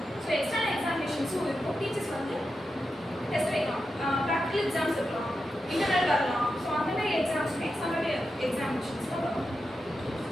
So external எக்ஸாமினேஷன்ஸும் இருக்கும், டீச்சர்ஸ் வந்து டெஸ்ட் வைக்கலாம், ப்ராக்டிகல் எக்ஸாம்ஸ் இருக்கலாம், இன்டர்னல் வரலாம். ஸோ அந்த மாதிரி எக்ஸாம்ஸுமே சம்மேட்டிவ் எக்ஸாமினேஷன்ஸில் வரும்.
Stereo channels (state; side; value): normal; both; correlation 0.89